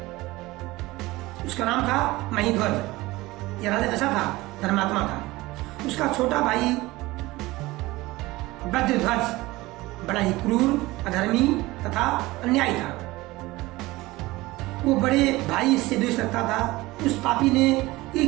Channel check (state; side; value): quieter; left; 19.8 dB